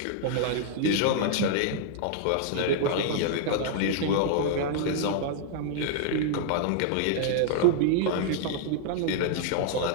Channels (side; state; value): both; different; correlation -0.01